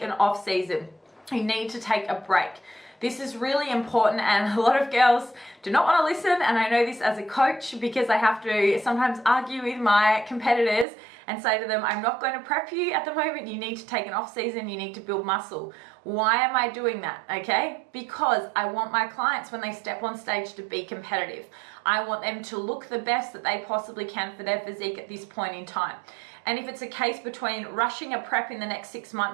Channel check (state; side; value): drops out; left; at 10.9 s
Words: an off season. You need to take a break. This is really important, and a lot of girls do not want to listen, and I know this as a coach because I have to sometimes argue with my competitors and say to them, I'm not going to prep you at the moment, you need to take an off season, you need to build muscle. Why am I doing that? Okay, because I want my clients when they step on stage to be competitive. I want them to look the best that they possibly can for their physique at this point in time. And if it's a case between rushing a prep in the next 6